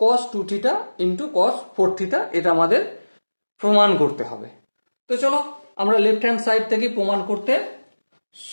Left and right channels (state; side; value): inverted; both; correlation -1.00